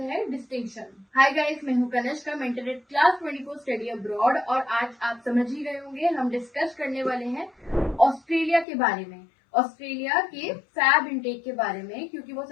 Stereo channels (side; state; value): right; drops out; at 8.7 s